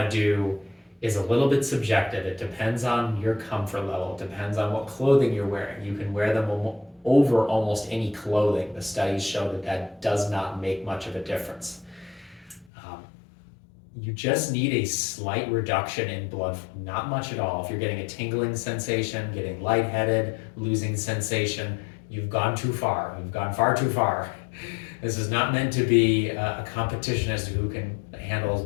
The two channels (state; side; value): drops out; right; at 12.7 s